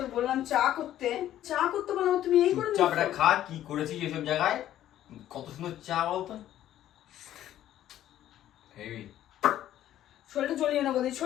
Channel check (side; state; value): right; quieter; 12.3 dB